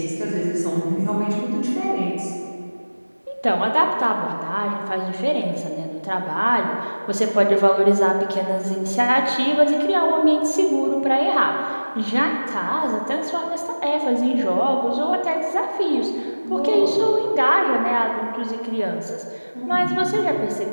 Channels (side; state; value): both; inverted; correlation -1.00